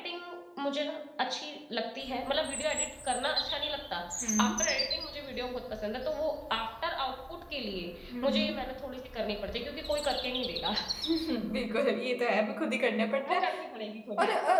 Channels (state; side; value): identical; both; correlation 1.00